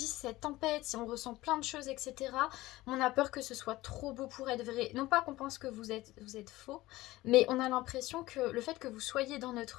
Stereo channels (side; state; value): right; quieter; 18.0 dB